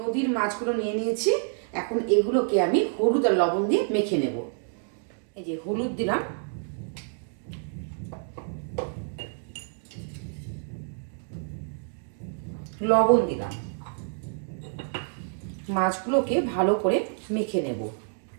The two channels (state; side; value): silent; left; 58 dB below the other